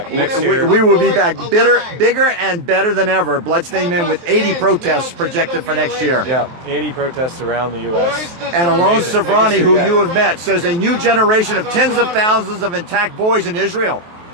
next year. We will be back bigger and better than ever. Bloodstained Men with 80 protests projected for next year. Yeah, 80 protests around the U.S. And Alon Amazing. Savrani, Biggest who year you yet. have met, says a new generation of tens of thousands of intact boys in Israel.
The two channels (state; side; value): late; left; 23 ms